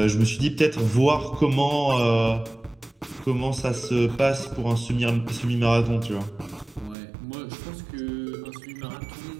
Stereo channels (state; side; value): drops out; left; at 7.0 s